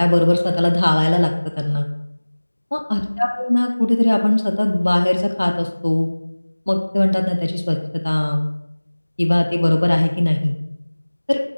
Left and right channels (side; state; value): both; inverted; correlation -1.00